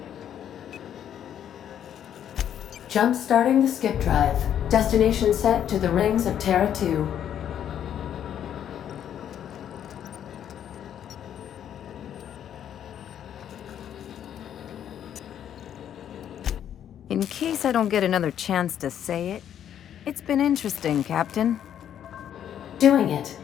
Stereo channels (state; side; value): quieter; right; 9.8 dB